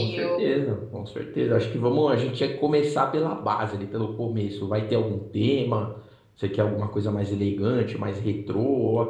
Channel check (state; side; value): identical; both; correlation 1.00